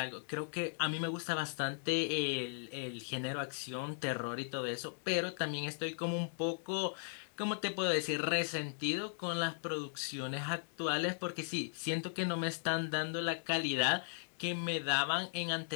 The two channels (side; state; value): right; silent; 53 dB below the other